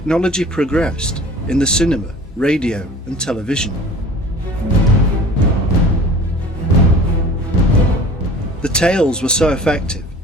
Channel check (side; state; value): both; normal; correlation 0.44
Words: progressed, in the cinema, radio and television. The tales were so effective